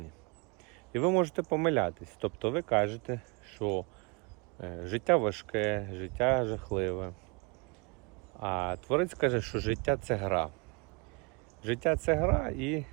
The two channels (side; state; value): left; quieter; 30.6 dB